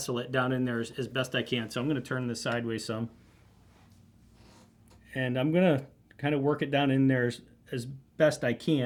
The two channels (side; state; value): both; identical; correlation 1.00